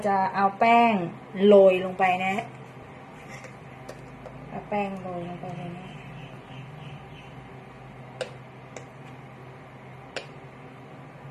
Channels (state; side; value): identical; both; correlation 1.00